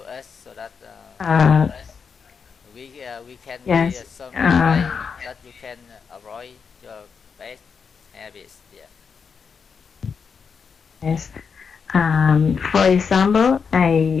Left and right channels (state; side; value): quieter; right; 6.0 dB